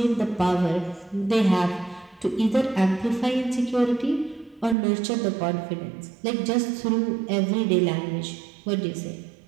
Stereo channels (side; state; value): left; drops out; at 4.8 s